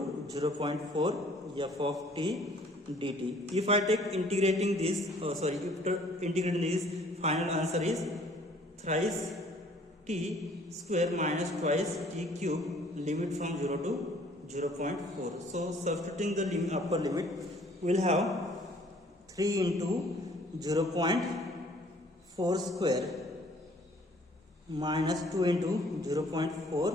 0.4 f of t dt. If I take integrating this, after integrating this, final answer is thrice t square minus twice t cube, limit from 0 to 0.4. So substituting the upper limit, we will have 3 into 0.4 square minus 2 into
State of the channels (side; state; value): both; normal; correlation 0.57